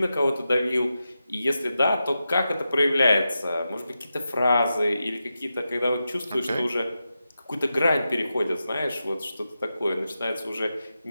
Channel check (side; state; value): both; inverted; correlation -0.90